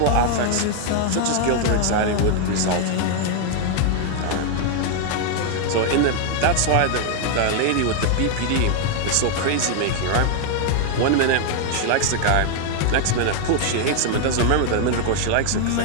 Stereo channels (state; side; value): different; both; correlation 0.00